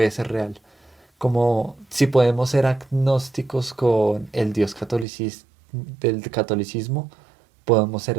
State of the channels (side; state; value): left; drops out; at 5.1 s